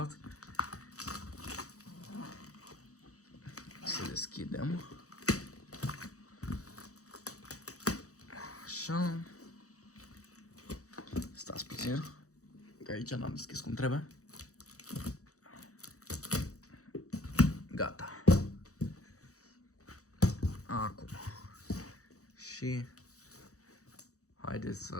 Să deschidem. Așa. Stați puțin, că aici n-am deschis cum trebuie. Gata. Acum. Și haideți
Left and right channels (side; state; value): right; late; 0.65 ms